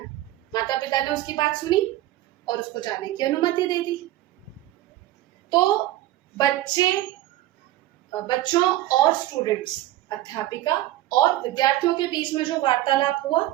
माता पिता ने उसकी बात सुनी और उसको जाने की अनुमति दे दी। तो बच्चों और स्टूडेंट्स, अध्यापिका और विद्यार्थियों के बीच में जो वार्तालाप हुआ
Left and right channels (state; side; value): quieter; left; 15.3 dB